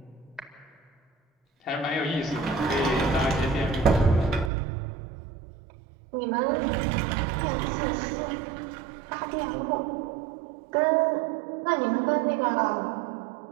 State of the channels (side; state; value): left; drops out; at 4.5 s